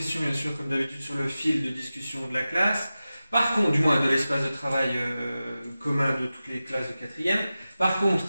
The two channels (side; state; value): both; inverted; correlation -0.94